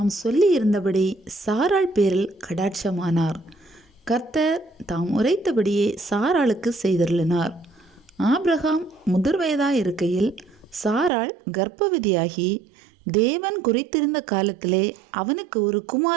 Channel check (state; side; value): drops out; left; at 11.1 s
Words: சொல்லியிருந்தபடி சாராள் பேரில் கடாட்சமானார். கர்த்தர் தாம் உரைத்தபடியே சாராளுக்கு செய்தருளினார். ஆபிரகாம் முதிர் வயதாயிருக்கையில் சாராள் கர்ப்பவதியாகி தேவன் குறித்திருந்த காலத்திலே அவனுக்கு ஒரு